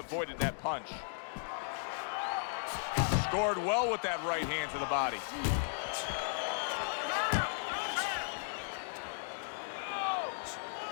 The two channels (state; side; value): silent; right; digital silence